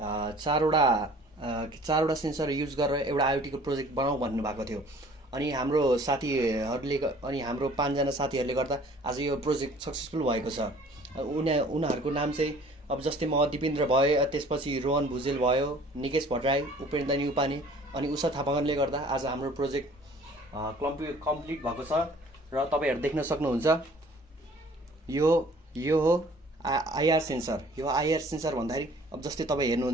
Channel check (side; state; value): both; normal; correlation 0.52